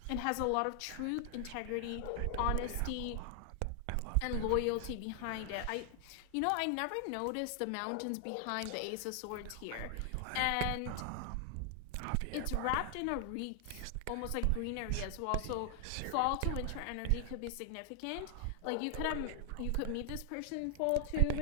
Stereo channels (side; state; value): both; different; correlation 0.00